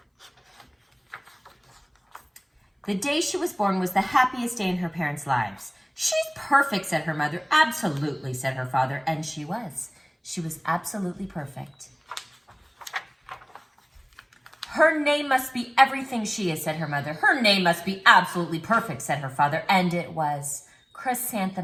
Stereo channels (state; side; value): identical; both; correlation 1.00